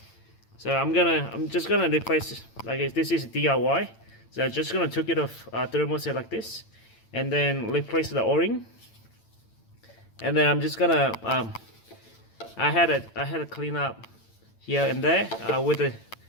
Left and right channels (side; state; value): right; late; 8.9 ms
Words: So I'm just gonna replace, like, this is DIY. So I'm just gonna take it off thermostat like this, and then replace the O-ring. And then I'm just gonna I had a clean up here and there with a